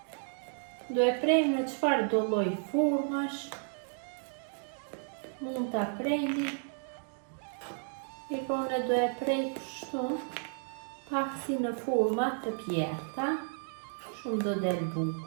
Do e prejmë në çfarë do lloj formash. Mund ta prejni. Ikone do e prej kështu, pak si në forma të pjerta, shumë do del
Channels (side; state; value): left; silent; 56 dB below the other